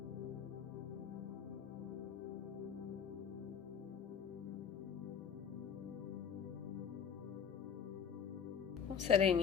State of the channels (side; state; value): right; quieter; 7.6 dB